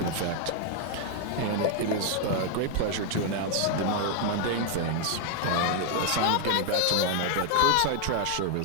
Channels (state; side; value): different; both; correlation 0.00